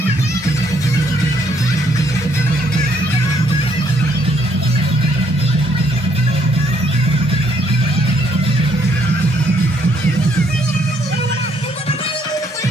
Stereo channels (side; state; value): both; normal; correlation 0.69